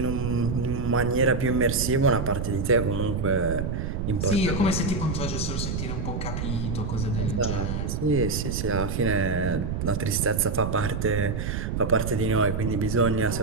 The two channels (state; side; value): noise; right; rumble, 2 dB below the sound